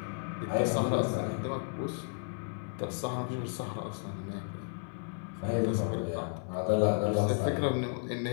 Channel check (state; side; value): silent; right; 56 dB below the other